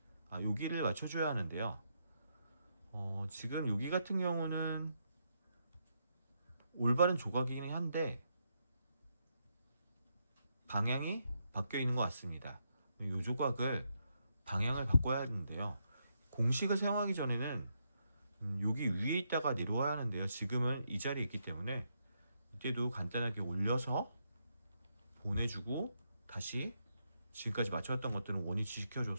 맞춰줘야 하는데요. 지금 여기 같은 경우는 올바른 조각이긴 한데 방향이 바뀌어 있는 것 같습니다. 이 조각을 방향을 바꿔야 하는데요. 공식을 사용하기 전에는 여기 위에 있다가 내려와야 하는데요. 지금은 이 자리에 있기 때문에 이때도 간단하게 올려서 보내주고 다시 지금까지 맞춰왔던 것들은 원위치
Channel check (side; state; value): both; inverted; correlation -0.79